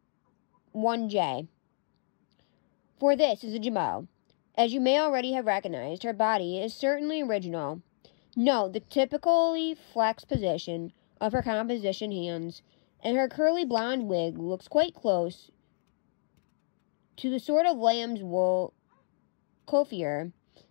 1J. For this is a Jummo. As you may already have recognized, her body is certainly original. Note the typically flexed position of her composition hands, and her curly blonde wig looks quite close to the sort of lamb's wool coiffure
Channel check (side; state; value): right; silent; digital silence